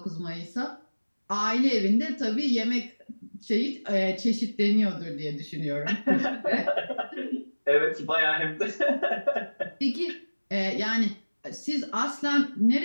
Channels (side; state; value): both; inverted; correlation -1.00